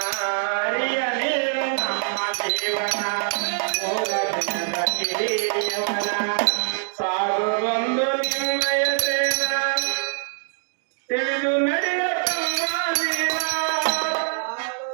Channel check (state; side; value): silent; left; digital silence